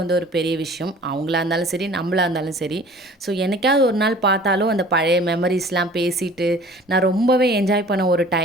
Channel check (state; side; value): normal; both; correlation 0.47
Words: வந்து ஒரு பெரிய விஷயம். அவங்களா இருந்தாலும் சரி, நம்மளா இருந்தாலும் சரி. ஸோ என்னைக்காவது ஒரு நாள் பார்த்தாலும் அந்த பழைய மெமரிஸ்லாம் பேசிட்டு நான் ரொம்பவே என்ஜாய் பண்ண ஒரு